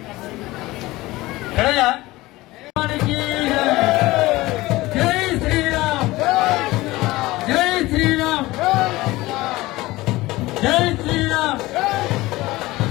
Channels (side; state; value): right; quieter; 19.1 dB